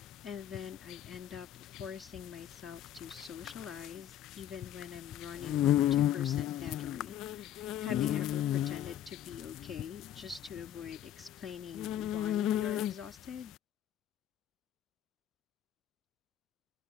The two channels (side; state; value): right; quieter; 11.1 dB